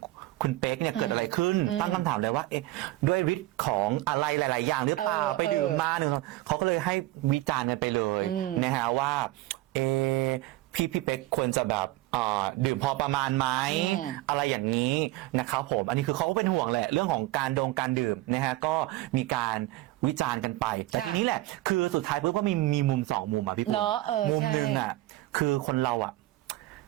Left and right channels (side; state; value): left; quieter; 17.5 dB